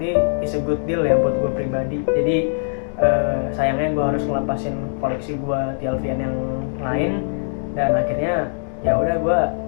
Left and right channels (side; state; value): right; silent; digital silence